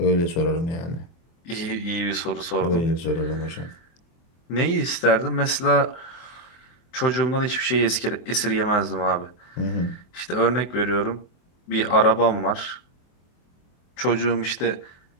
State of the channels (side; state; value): right; late; 24 ms